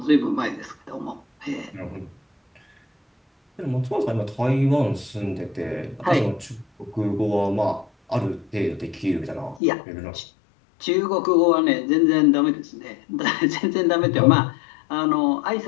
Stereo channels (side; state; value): right; drops out; at 9.6 s